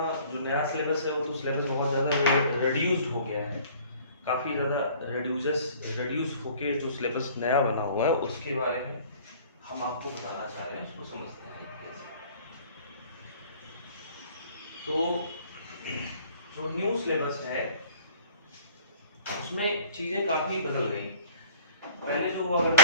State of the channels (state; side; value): inverted; both; correlation -0.51